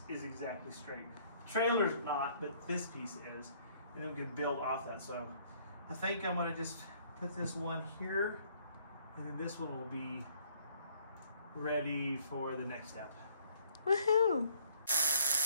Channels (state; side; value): inverted; both; correlation -0.61